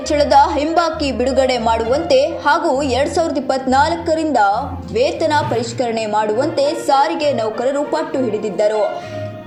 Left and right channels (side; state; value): both; identical; correlation 1.00